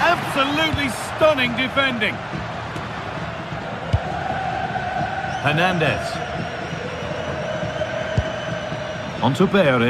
Absolutely stunning defending. Hernandez. On to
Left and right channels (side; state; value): both; identical; correlation 1.00